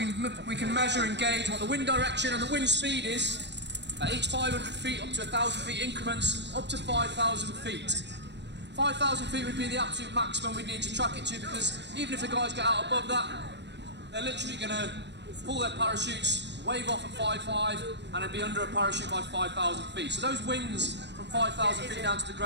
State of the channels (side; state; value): left; late; 0.51 ms